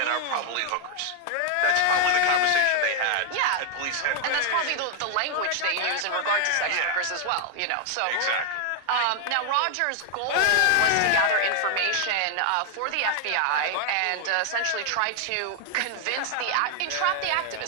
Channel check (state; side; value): different; both; correlation 0.00